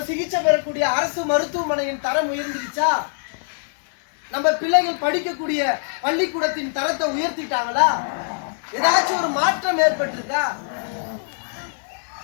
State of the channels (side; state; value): right; silent; digital silence